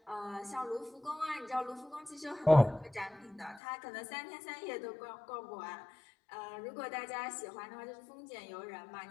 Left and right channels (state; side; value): drops out; right; at 3.6 s